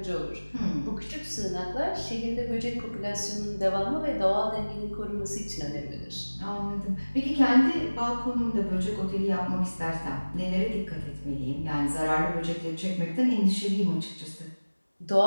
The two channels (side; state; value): both; inverted; correlation -1.00